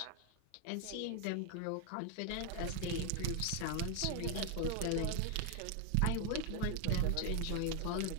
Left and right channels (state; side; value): different; both; correlation 0.01